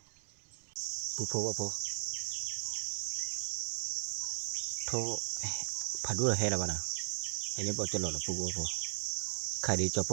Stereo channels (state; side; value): silent; left; 53 dB below the other